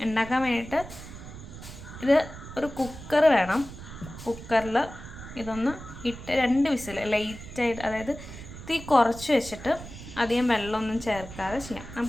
വേണ്ടിയിട്ട് ഇത് ഒരു കുക്കർ വേണം. കുക്കറിൽ ഇതൊന്ന് ഇട്ട് 2 വിസിൽ ലൈറ്റായിട്ട്, അതായത് തീ കുറച്ച് വെച്ചിട്ട് അധികം വെള്ളമൊന്നും ചേർക്കാതെ ചെയ്യാം.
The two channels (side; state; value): right; noise; rumble, 13 dB below the sound